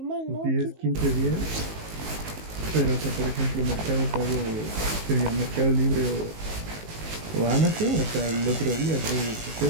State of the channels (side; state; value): left; late; 19 ms